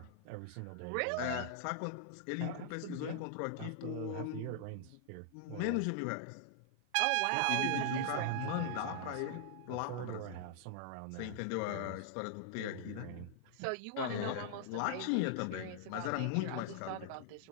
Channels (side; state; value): both; different; correlation -0.01